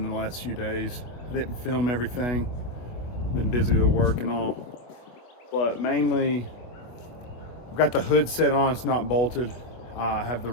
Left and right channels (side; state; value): right; late; 24 ms